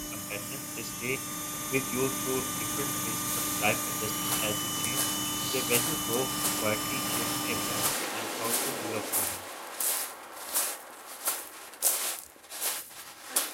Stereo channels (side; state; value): both; identical; correlation 1.00